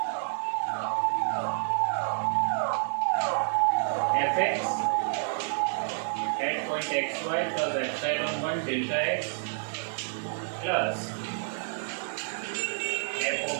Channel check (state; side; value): silent; left; 59 dB below the other